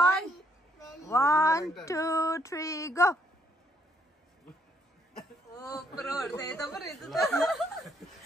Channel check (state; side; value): normal; both; correlation 0.71